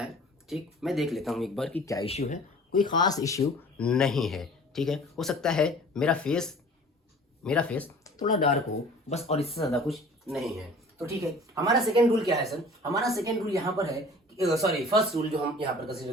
है। ठीक, मैं देख लेता हूँ एक बार कि क्या इश्यू है। कोई ख़ास इश्यू नहीं है, ठीक है। हो सकता है मेरा फेस थोड़ा डार्क हो बस, और इससे ज़्यादा कुछ नहीं है। तो ठीक है, हमारा सेकेंड रूल क्या है सर? हमारा सेकेंड रूल यहाँ पर है, फर्स्ट रूल जो हम यहाँ पर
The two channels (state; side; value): normal; both; correlation 0.47